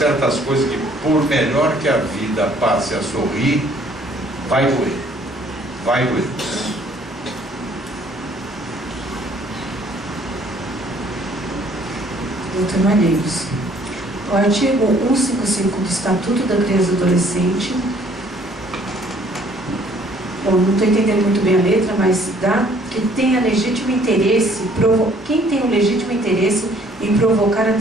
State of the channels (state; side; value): normal; both; correlation 0.60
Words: coisas que, por melhor que a vida passe a sorrir, vai doer. Doutor Malheiros, o artigo 155 do Estatuto da Criança e do Adolescente, eu não estou entendendo muito bem a letra, mas dá que tenha legítimo interesse, quem tem o legítimo interesse em provocar a